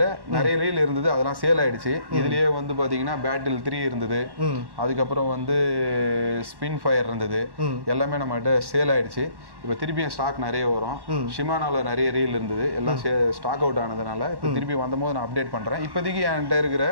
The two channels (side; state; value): left; late; 1.1 ms